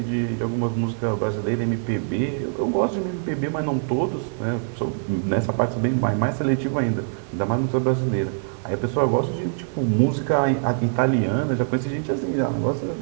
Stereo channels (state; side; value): silent; left; 63 dB below the other